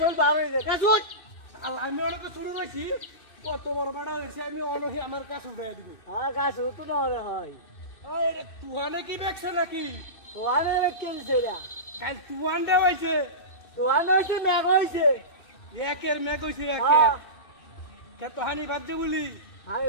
বার হয়েছে গাছ উঠ আমি অনেক শুরু হয়েছি কত বড় বেড়া হয়েছে আমি অনহি আমার কাছে উঠাই দিবি হ্যাঁ গাছ উঠু না হলে হয় তুহানে কি দেখছে নাকি তোয়ানে কেলছে না কাল তুহান দে হয়েছে তোয়ানে হয়েছে মেঘ হয়েছে একের মেঘ হয়েছে হ্যাঁ একের কে তো হানি বাদ বলি আমি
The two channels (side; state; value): right; late; 2.6 ms